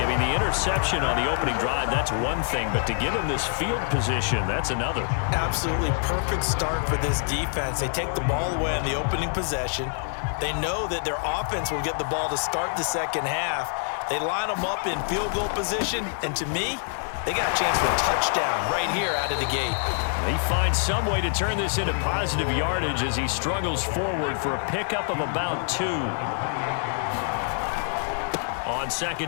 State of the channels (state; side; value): silent; right; digital silence